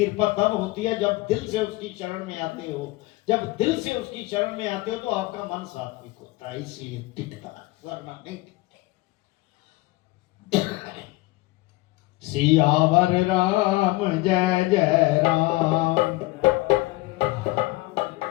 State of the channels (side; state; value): right; quieter; 20.6 dB